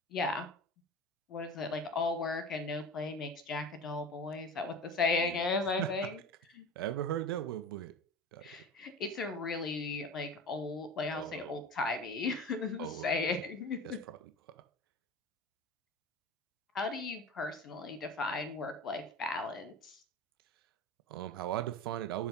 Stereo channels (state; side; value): normal; both; correlation 0.33